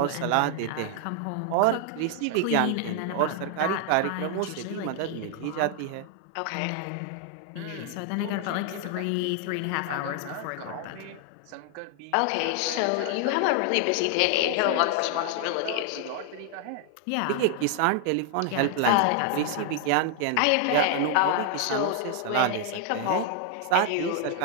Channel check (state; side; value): different; both; correlation 0.00